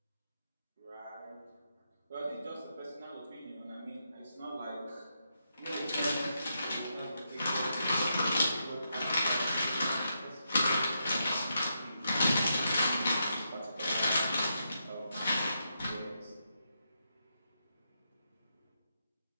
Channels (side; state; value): both; inverted; correlation -0.82